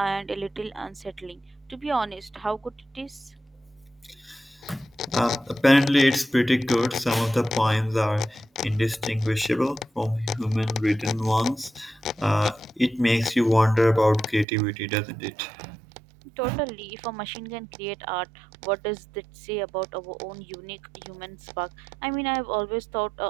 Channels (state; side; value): drops out; left; at 14.5 s